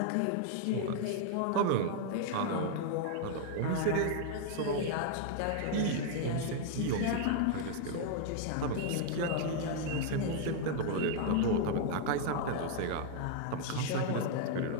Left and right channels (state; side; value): different; both; correlation 0.00